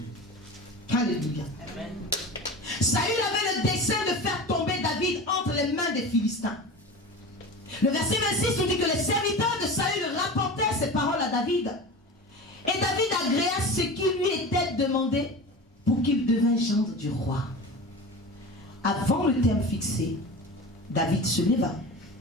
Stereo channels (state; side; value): normal; both; correlation 0.32